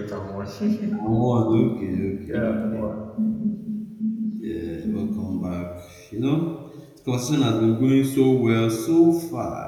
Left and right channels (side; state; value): both; identical; correlation 1.00